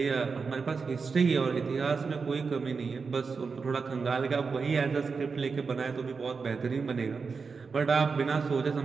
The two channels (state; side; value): quieter; left; 5.0 dB